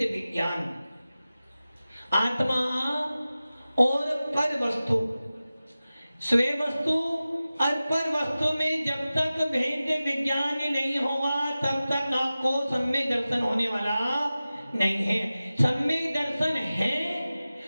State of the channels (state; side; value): inverted; both; correlation -0.96